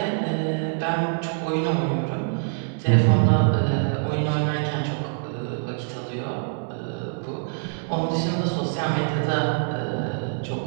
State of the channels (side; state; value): left; silent; 62 dB below the other